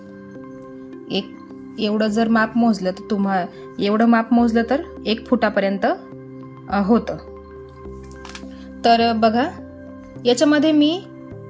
एवढं जर माप मोजलं तर एवढं माप मोजलं तर 1 फुटापर्यंत होतं। तर बघा, याच्यामध्ये मी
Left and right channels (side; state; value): both; identical; correlation 1.00